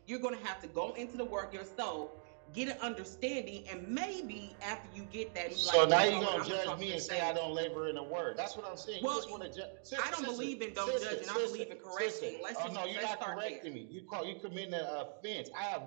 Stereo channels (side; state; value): left; silent; digital silence